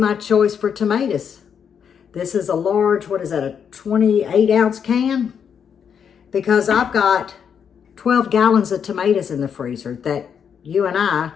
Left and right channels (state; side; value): quieter; right; 7.5 dB